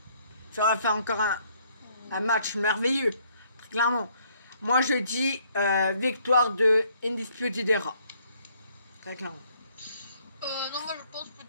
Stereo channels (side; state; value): both; inverted; correlation -0.66